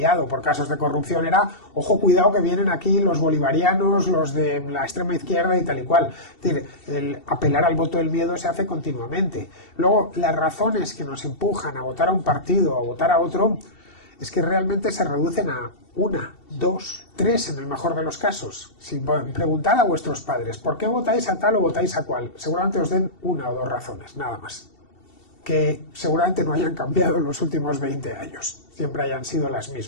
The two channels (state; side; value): late; right; 2.7 ms